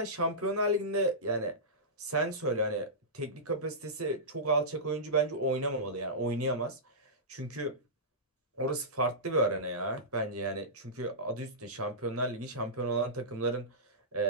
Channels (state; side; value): normal; both; correlation -0.17